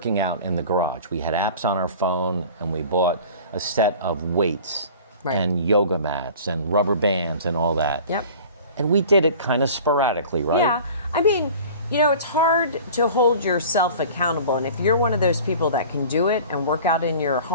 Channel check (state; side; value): inverted; both; correlation -0.43